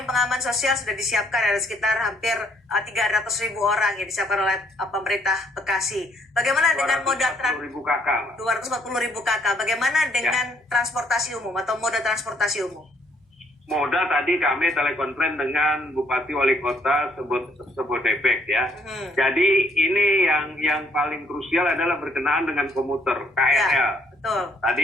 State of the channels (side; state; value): both; normal; correlation 0.67